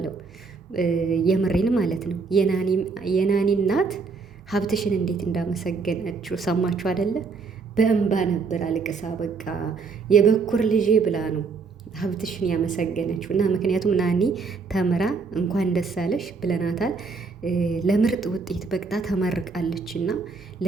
የምሬን ማለት ነው። የናኒ እናት ሀብትሽን እንዴት እንዳመሰገነችው ሰማችሁ አይደለ? በእንባ ነበር አልቅሳ በቃ የበኩር ልጄ ብላ ነው ሀብትሽን ያመሰገነችው። እና ምክንያቱም ናኒ ተምራ እንኳን ደስ አለሽ ብለናታል። ለምርጥ ውጤት በቅጣ ተመርቃለች። እና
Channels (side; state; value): left; quieter; 4.7 dB